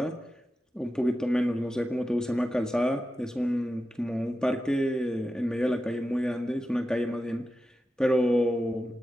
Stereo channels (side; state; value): both; normal; correlation 0.91